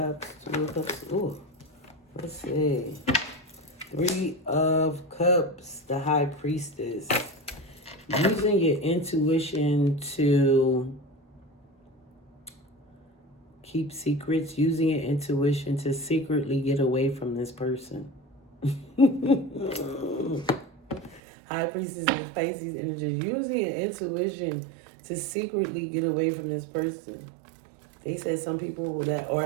Two of Cups. Ooh, let's see. Three of Cups, the High Priestess. Using your intuition to keep secrets, using your intuition to secretly get away from this person. High Priestess and Pisces energy. Using your intuition to secretly get away from this person. They said some people that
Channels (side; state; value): left; drops out; at 21.2 s